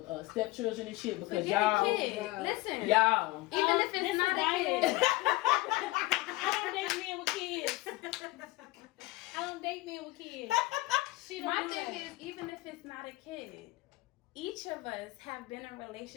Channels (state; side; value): quieter; right; 20.0 dB